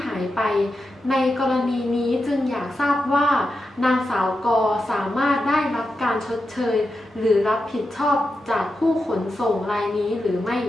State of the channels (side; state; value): both; normal; correlation 0.89